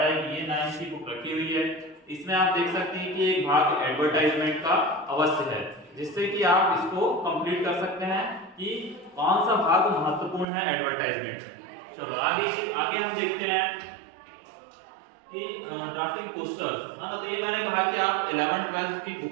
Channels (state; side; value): drops out; left; at 10.5 s